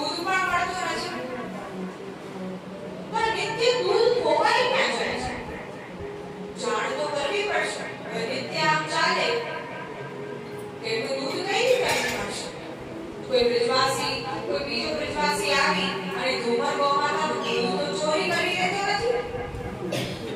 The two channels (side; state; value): both; identical; correlation 1.00